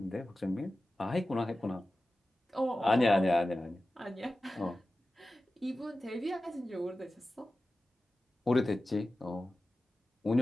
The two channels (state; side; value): normal; both; correlation 0.95